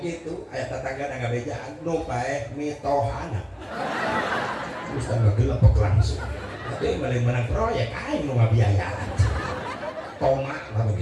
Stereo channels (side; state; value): both; identical; correlation 1.00